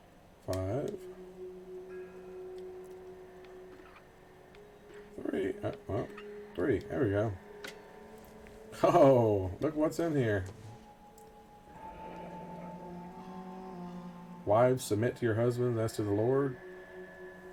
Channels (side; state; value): both; identical; correlation 1.00